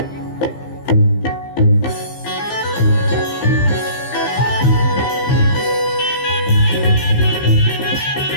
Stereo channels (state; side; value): late; right; 15 ms